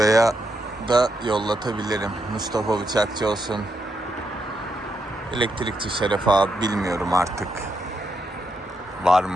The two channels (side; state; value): both; normal; correlation 0.81